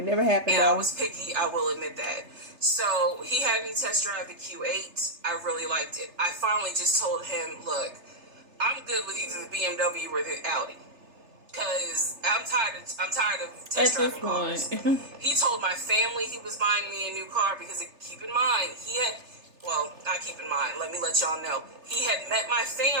never happened. And I was picky, I will admit that. So he had me test drive the Q8. I really liked it. I finally just told him, look, I'm good with either the BMW or the Audi. Because I'm tired of test driving cars. He told my family he was buying me a new car because, keep in mind, let me let y'all know. He had met my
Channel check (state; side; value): late; left; 3.3 ms